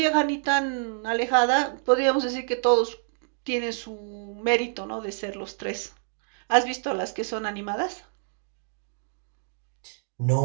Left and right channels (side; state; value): left; silent; digital silence